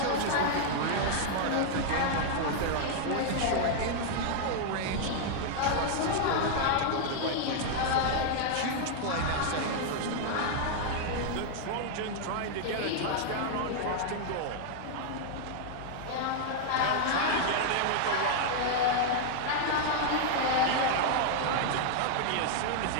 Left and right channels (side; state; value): both; different; correlation 0.00